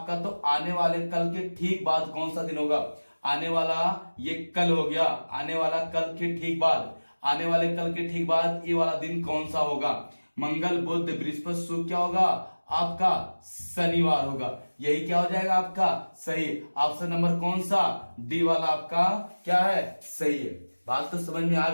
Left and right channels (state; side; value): inverted; both; correlation -1.00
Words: तो आने वाले कल के ठीक बाद कौन सा दिन होगा। आने वाला ये कल हो गया, आने वाला कल के ठीक बाद, आने वाले कल के ठीक बाद ये वाला दिन कौन सा होगा। मंगल बुध बृहस्पति शुक्र क्या होगा आपका शनिवार होगा। यही क्या हो जाएगा आपका सही। ऑप्शन नंबर कौन सा, डी वाला आपका क्या है सही है। बात तो समझ में आ